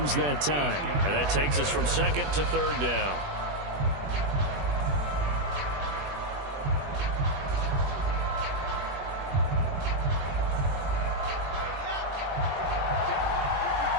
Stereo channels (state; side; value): late; left; 21 ms